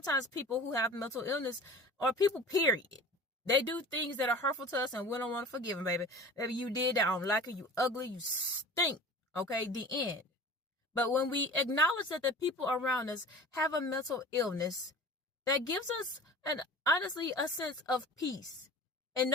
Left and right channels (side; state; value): both; normal; correlation 0.39